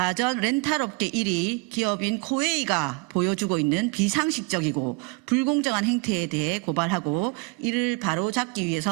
렌탈업계 1위 기업인 코웨이가 보여주고 있는 비상식적이고 불공정한 행태에 대해 고발하고 이를 바로잡기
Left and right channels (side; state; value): left; quieter; 28.4 dB